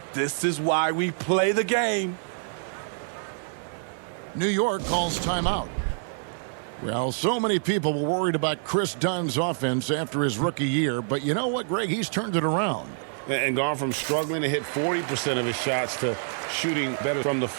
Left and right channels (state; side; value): silent; left; digital silence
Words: this is why we play the game. New York calls timeout. Well, so many people were worried about Chris Dunn's offense after his rookie year, but you know what, Greg? He's turned it around. And gone from struggling to hit 40% of his shots to shooting better from the